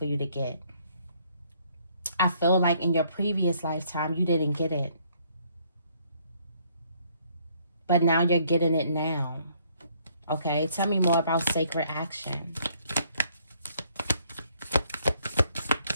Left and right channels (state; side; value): inverted; both; correlation -0.66